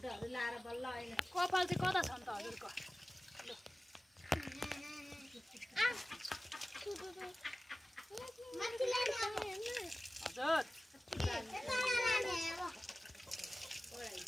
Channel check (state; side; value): normal; both; correlation 0.97